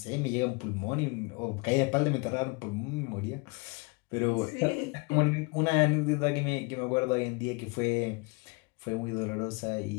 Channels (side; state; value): right; quieter; 29.2 dB